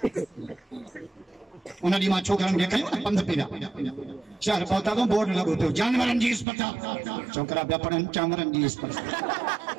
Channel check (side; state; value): left; drops out; at 6.5 s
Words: उन ॾींहुं मां छोकरनि खे खयो पंध पिया चार पहुता तो बोर्ड लगो तो जानवरन जी अस्पताल छोकरा पिया पढ़नि जानवरन जी